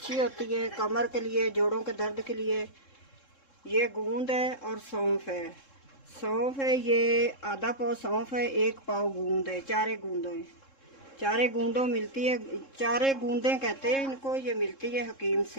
होती है कमर के लिए, जोड़ों के दर्द के लिए। ये गूंद है और सौंफ है। सौंफ है, ये आधा पाव सौंफ है, 1 पाव गूंद है। 4 गूंदों है, 4 गूंदों मिलती है, 4 गूंदें कहते हैं इनको। ये मिलती है हकीम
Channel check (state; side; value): late; right; 3.7 ms